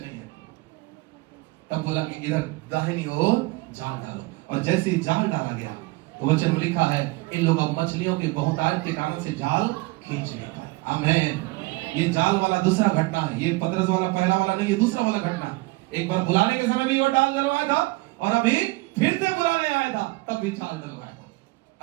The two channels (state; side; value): quieter; left; 23.1 dB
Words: है। तब बोला कि इधर दाहिनी ओर जाल डालो, और जैसे ही जाल डाला गया तो वचन में लिखा है, इन लोगों मछलियों के बहुतायत के कारण से जाल खींच नहीं पाए। आमीन। ये जाल वाला दूसरा घटना है, ये पतरस वाला पहला वाला नहीं, ये दूसरा वाला घटना। एक बार बुलाने के समय भी वो डाल डलवाया था, और अभी फिर से बुलाने आया था, तब भी जाल डलवाया था।